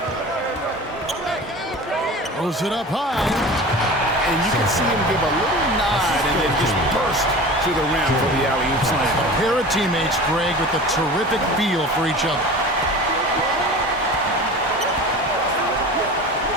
Throws it up high. And you can see him give a little nod and then just burst to the rim for the alley-oop slam. A pair of teammates, Greg, with a terrific feel for each other.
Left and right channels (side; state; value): both; normal; correlation 0.36